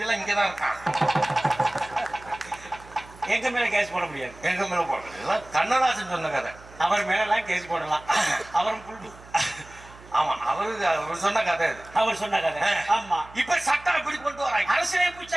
எல்லாம் இங்கதான் இருக்காங்க. எங்க மேல கேஸ் போட முடியாது. எங்க மேல போட கண்ணதாசன் சொன்ன கதை. அவர் மேல எல்லாம் கேஸ் போடலாம். அவரும் ஆமா அவர் சொன்ன கதை. அவர் சொன்ன கதை. ஆமா இப்ப சட்டம் எப்படி கொண்டு வராங்க? அரசியலமைப்பு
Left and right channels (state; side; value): noise; right; hum, 21 dB below the sound